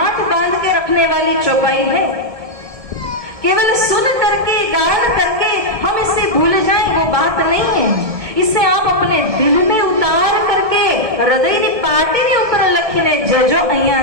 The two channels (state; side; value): late; left; 1.7 ms